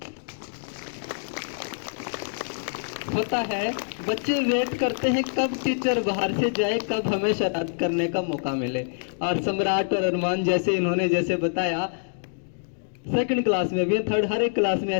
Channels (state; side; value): silent; right; digital silence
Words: होता है बच्चे वेट करते हैं कब टीचर बाहर से जाए, कब हमें शरारत करने का मौका मिले। और सम्राट और अरमान इन्होंने जैसे बताया, सेकंड क्लास में भी, थर्ड, हर एक क्लास में